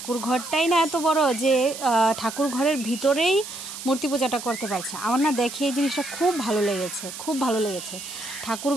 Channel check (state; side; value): noise; right; hiss, 10 dB below the sound